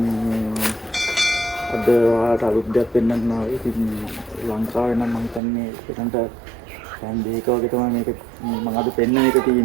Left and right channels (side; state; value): left; drops out; at 5.4 s